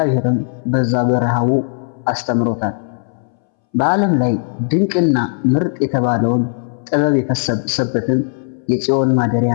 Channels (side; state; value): right; silent; 66 dB below the other